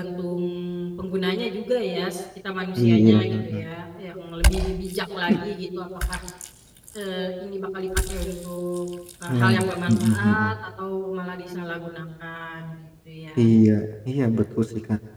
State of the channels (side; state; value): both; identical; correlation 1.00